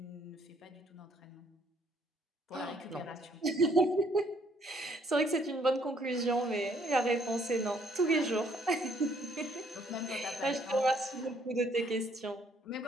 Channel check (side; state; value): both; normal; correlation 0.66